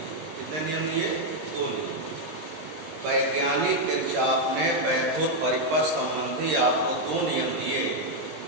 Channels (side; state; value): left; late; 19 ms